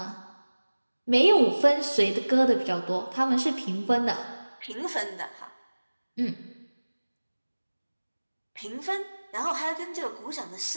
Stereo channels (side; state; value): both; inverted; correlation -1.00